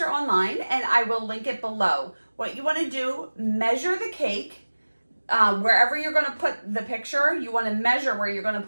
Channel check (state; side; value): inverted; both; correlation -1.00